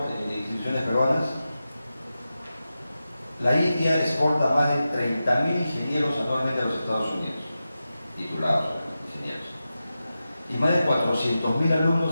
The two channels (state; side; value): inverted; both; correlation -0.92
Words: instituciones peruanas. La India exporta más de 30.000 ingenieros anualmente a los Estados Unidos, titulados ingenieros. Y más de 400.000